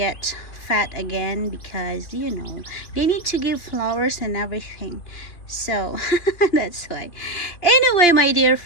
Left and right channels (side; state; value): right; late; 2.9 ms